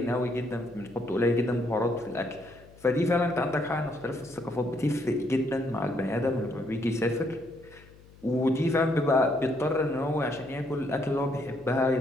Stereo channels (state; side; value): noise; left; hum, 24 dB below the sound